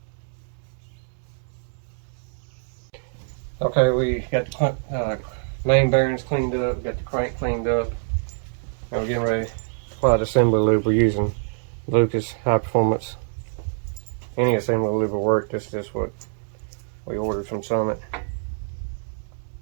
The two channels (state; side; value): silent; left; digital silence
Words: Okay, we got the main bearings cleaned up, got the crank cleaned up. Now we're getting ready to apply the assembly lube. We're using Lucas High Performance. Any assembly lube will work. This is just what we ordered from Summit.